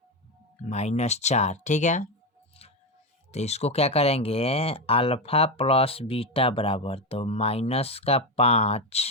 -4। ठीक है, तो इसको क्या करेंगे, अल्फा प्लस बीटा बराबर, तो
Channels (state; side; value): normal; both; correlation 0.13